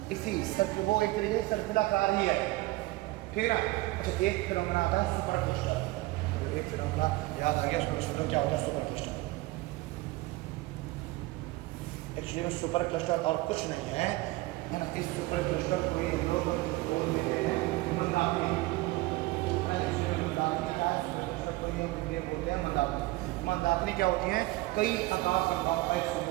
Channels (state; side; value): quieter; left; 19.9 dB